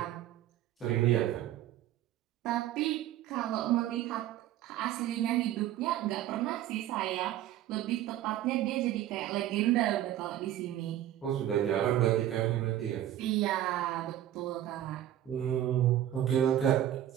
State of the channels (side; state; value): left; quieter; 12.5 dB